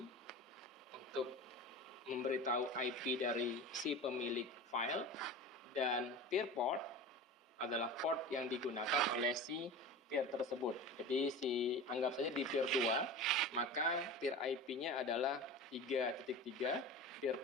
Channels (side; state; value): both; normal; correlation 0.31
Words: untuk memberitahu IP dari si pemilik file, dan peer port adalah port yang digunakan oleh si peer tersebut. Jadi anggap saja di peer 2, maka peer IP-nya adalah 3.3, peer